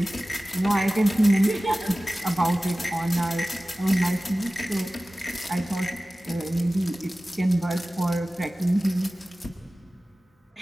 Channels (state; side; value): normal; both; correlation 0.97